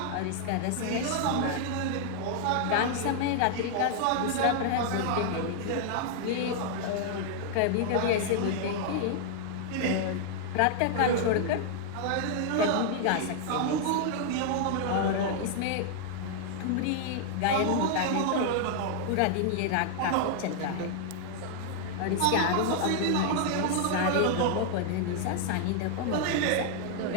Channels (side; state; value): both; different; correlation -0.01